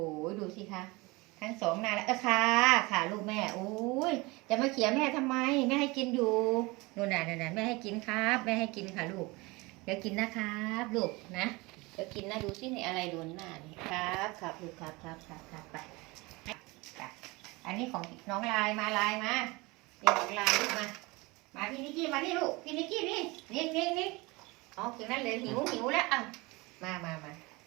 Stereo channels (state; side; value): quieter; left; 24.1 dB